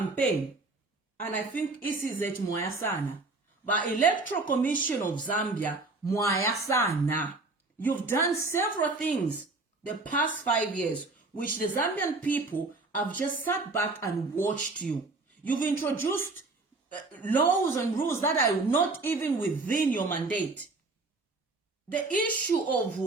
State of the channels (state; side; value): quieter; left; 3.4 dB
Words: And I think ECZ mwaya sana. But Electoral Commission of Zambia mwaya sana. You've done several things the past 5 years which the Zambian people have just sat back and watched you. You've introduced laws and rules that are not even within your mandate. The issue of